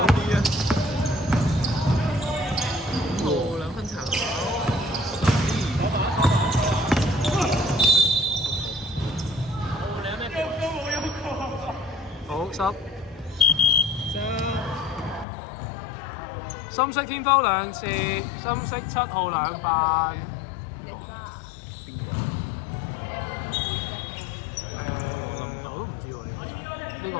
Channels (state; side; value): drops out; right; at 15.2 s